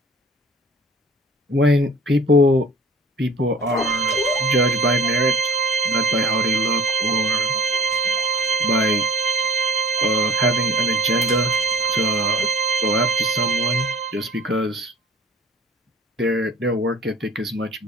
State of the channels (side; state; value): both; normal; correlation 0.45